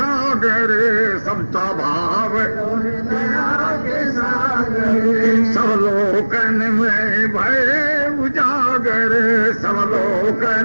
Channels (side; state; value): both; inverted; correlation -1.00